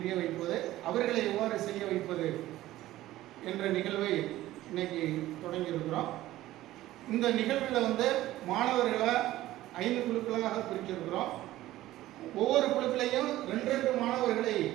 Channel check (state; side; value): quieter; left; 15.5 dB